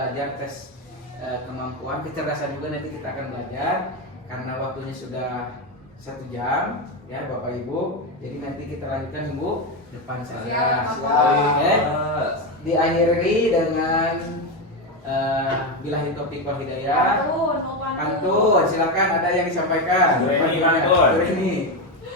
tes kemampuan kecerdasan juga nanti kita akan belajar karena waktunya sudah 1 jam ya Bapak Ibu. Jadi nanti kita lanjutkan minggu depan saja. Oke. Diakhiri dengan billahi taufiq wal hidayah. Pantun, silakan ada yang disampaikan. Dureni, Pantunnya. pantun. Dureni.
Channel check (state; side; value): normal; both; correlation 0.12